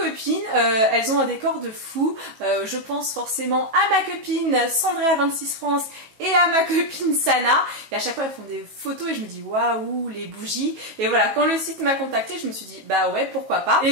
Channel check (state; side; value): late; left; 18 ms